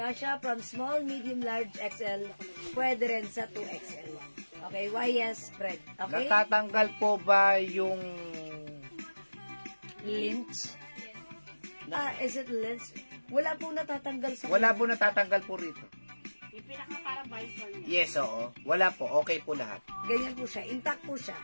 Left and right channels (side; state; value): both; inverted; correlation -1.00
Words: from small, medium, large, XL. Pwede rin sa 2XL. Okay, YS spread. Okay? Natatanggal po ba yung... Lynch. Is it lynch? Wala pong natatanggal sa... Wala po natatanggal po rito. Yung pinaka para visor niya. Yes, oo. Wala po. Okay po lahat. Ganyan po siya. Intact po siya.